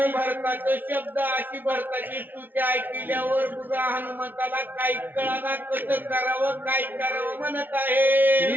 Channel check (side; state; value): left; late; 0.089 ms